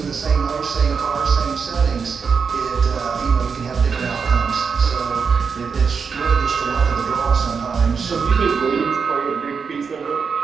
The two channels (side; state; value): left; quieter; 5.8 dB